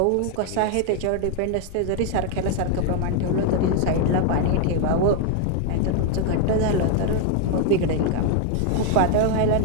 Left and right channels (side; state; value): both; different; correlation 0.00